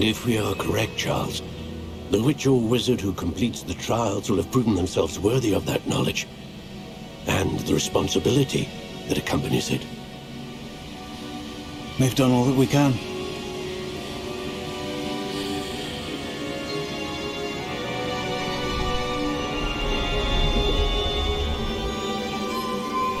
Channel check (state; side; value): identical; both; correlation 1.00